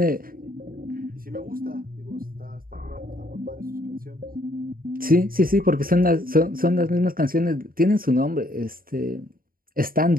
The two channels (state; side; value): late; left; 0.42 ms